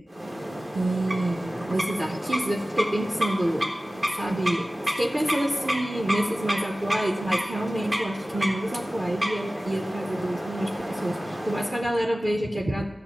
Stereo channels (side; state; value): both; normal; correlation 0.96